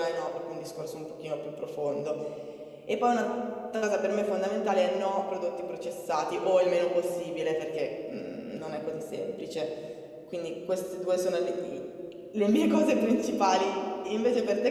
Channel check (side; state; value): both; identical; correlation 1.00